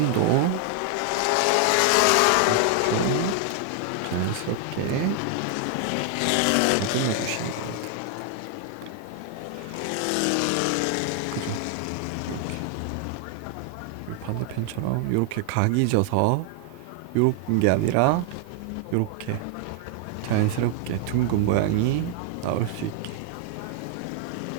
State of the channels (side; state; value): both; different; correlation 0.00